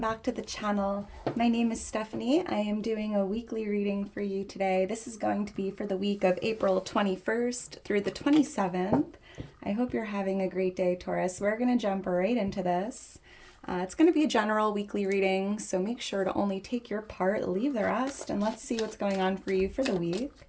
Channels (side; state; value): both; identical; correlation 1.00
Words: to the channel. My name is Stephanie. I am doing a weekly reading for you today. This is going to be for the week of April 21st through the 27th. I hope you're having a great day, Taurus. We're going to jump right into this. It's going to be a general weekly reading, so make sure to only take your part, leave the rest, and let's see what's going on for you for the week.